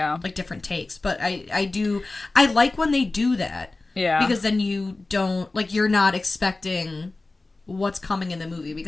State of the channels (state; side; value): quieter; right; 3.2 dB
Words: Like different takes. But I like when they do that. Yeah. Because then you don't, like, you're not expecting what's coming in the movie